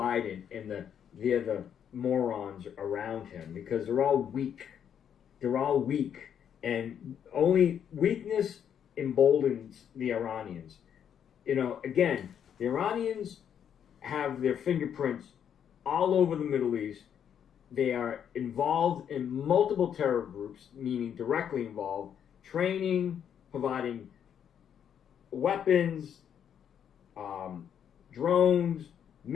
and the other morons around him, because they're all weak. They're all weak. And only weakness emboldens the Iranians. Again, the Iranians have their fingerprints all over the Middle East. They are involved in multiple terror groups, meaning directly involved, training, providing weapons, drones,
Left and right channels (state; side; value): quieter; right; 8.7 dB